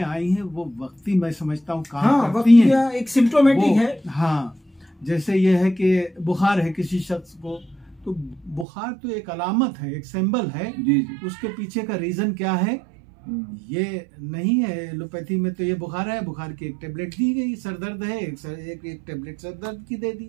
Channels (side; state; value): left; drops out; at 8.7 s